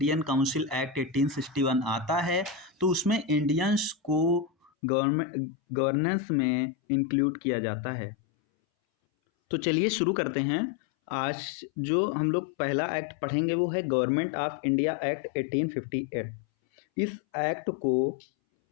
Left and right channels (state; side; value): drops out; right; at 4.7 s